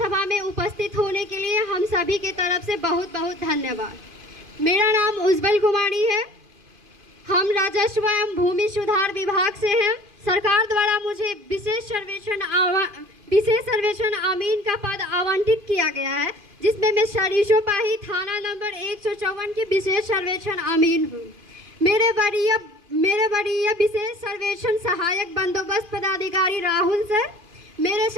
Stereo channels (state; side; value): late; left; 2.5 ms